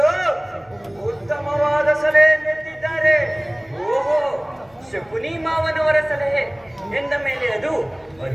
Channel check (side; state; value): left; noise; hum, 30 dB below the sound